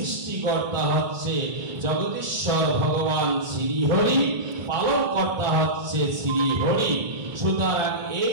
হচ্ছে জগদীশ্বর ভগবান শ্রীহরি, পালনকর্তা হচ্ছে শ্রীহরি। সুতরাং এই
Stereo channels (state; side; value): late; left; 2.2 ms